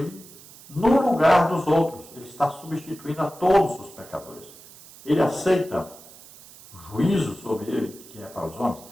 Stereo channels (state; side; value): noise; right; hiss, 20 dB below the sound